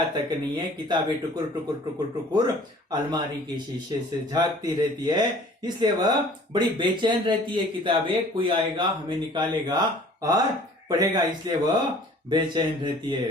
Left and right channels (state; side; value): normal; both; correlation 0.50